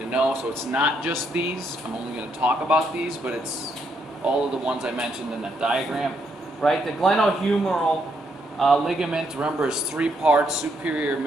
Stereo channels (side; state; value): both; normal; correlation 0.76